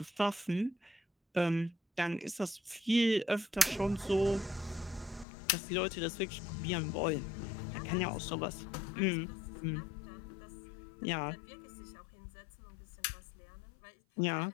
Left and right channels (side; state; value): right; drops out; at 5.2 s